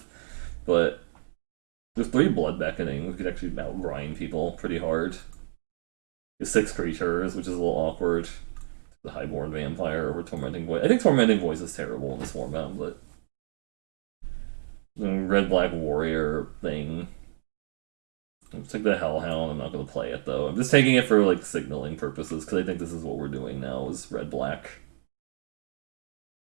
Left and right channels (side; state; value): left; silent; digital silence